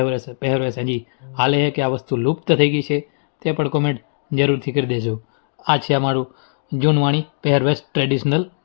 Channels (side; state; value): right; silent; digital silence